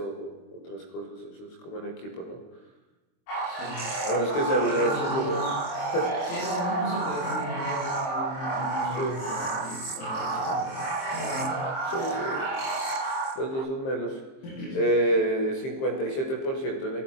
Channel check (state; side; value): late; right; 23 ms